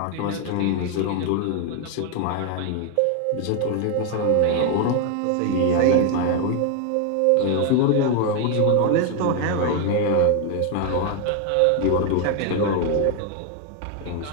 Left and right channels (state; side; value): different; both; correlation 0.01